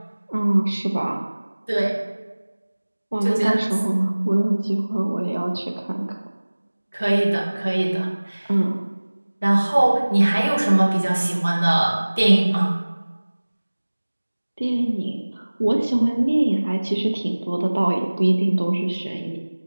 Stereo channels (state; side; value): inverted; both; correlation -1.00